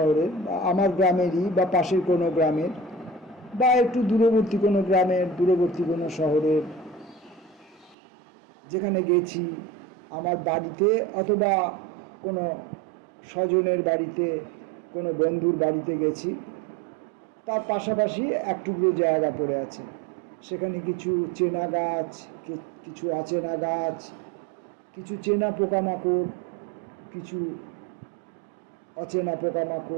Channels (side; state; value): left; drops out; at 8.0 s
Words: বা আমার গ্রামেরই বা পাশের কোনো গ্রামের বা একটু দূরবর্তী কোনো গ্রামের, দূরবর্তী কোনো শহরের যেখানে গেছি, আমার বাড়িতে অথবা কোনো স্বজনের বাড়িতে, কোনো বন্ধুর বাড়িতে গেছি, তার পাশাপাশি এক টুকরো জায়গা পড়ে আছে, সেখানে কিছু চেনা গাছ, কিছু অচেনা গাছ, কিছু চেনা পোকামাকড়, কিছু অচেনা